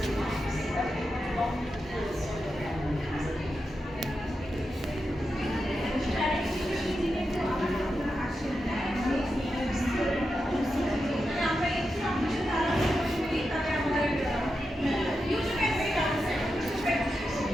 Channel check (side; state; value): both; normal; correlation 0.88